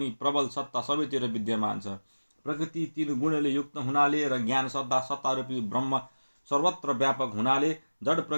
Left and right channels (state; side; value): inverted; both; correlation -1.00